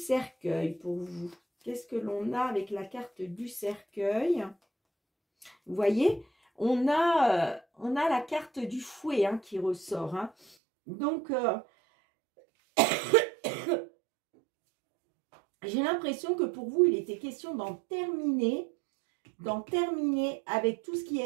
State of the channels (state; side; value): drops out; left; at 10.6 s